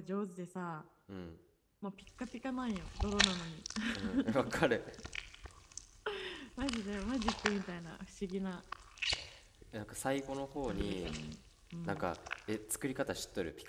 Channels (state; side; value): identical; both; correlation 1.00